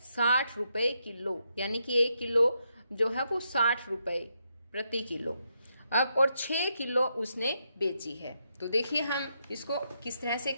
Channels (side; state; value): both; inverted; correlation -0.80